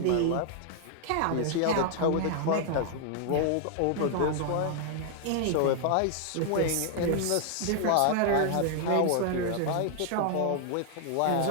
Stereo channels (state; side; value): different; both; correlation 0.00